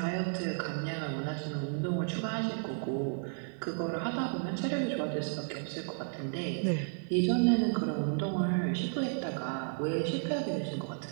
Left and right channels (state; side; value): silent; left; digital silence